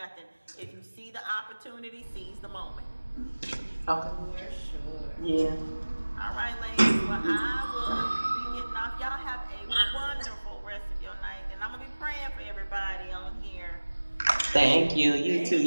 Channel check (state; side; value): inverted; both; correlation -1.00